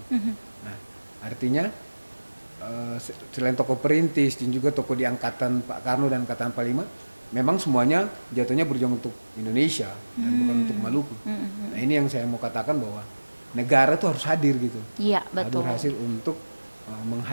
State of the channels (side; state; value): both; inverted; correlation -1.00